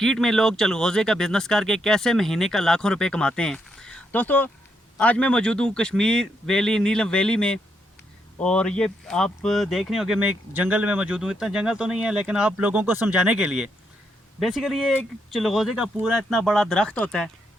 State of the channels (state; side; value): normal; both; correlation 0.78